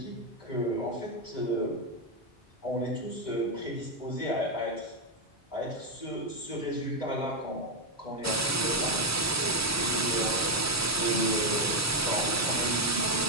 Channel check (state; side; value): normal; both; correlation 0.06